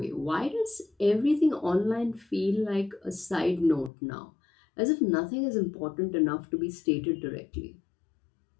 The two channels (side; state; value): right; drops out; at 3.9 s